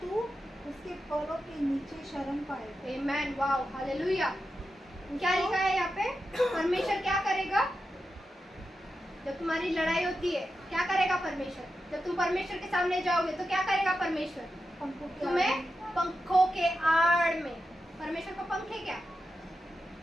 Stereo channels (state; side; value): normal; both; correlation 0.89